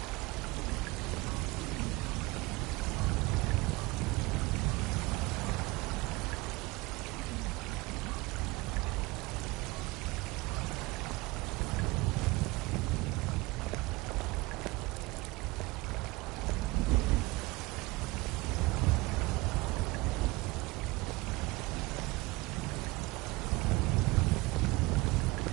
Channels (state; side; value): quieter; left; 22.0 dB